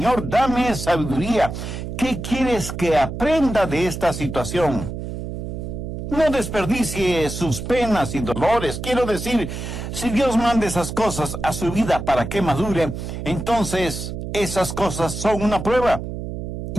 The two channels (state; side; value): noise; right; hum, 6 dB below the sound